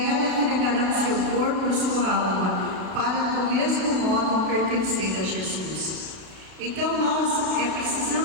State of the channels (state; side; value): late; left; 32 ms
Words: entregarão seu corpo e sua alma, para do mesmo modo pertencer a Jesus. Então nós